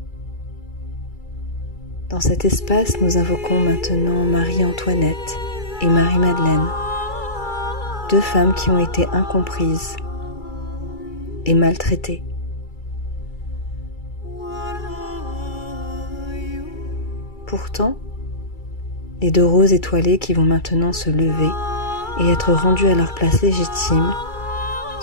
Dans cet espace, nous invoquons maintenant Marie-Antoinette et Marie-Madeleine, deux femmes qui ont été incomprises et maltraitées. Pourtant, les deux roses étoilées qui vont maintenant se lever et être rendues à leur place légitime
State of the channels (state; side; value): late; right; 2.3 ms